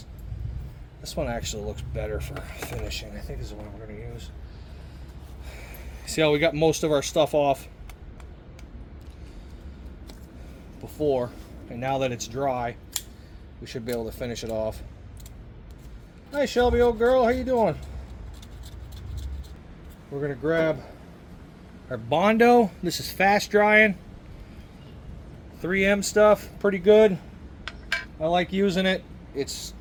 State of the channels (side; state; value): both; identical; correlation 1.00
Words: This one actually looks better for finishing. I think this is the one we're going to use. See how we got most of our stuff off before, and now that it's dry, we should be able to finish it off. Hi Shelby, old girl, how you doing? We're going to grab our Bondo. This is fast drying. 3M stuff, pretty good. I like using it. It's,